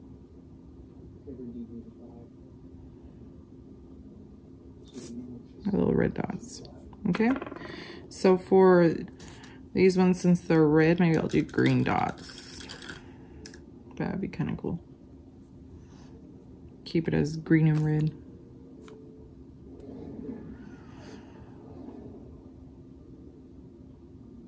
Little red dots. Okay, so for these ones, since they're red, maybe I'll do green dots. That'd be kind of cool. Keep it as green and red.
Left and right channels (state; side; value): identical; both; correlation 1.00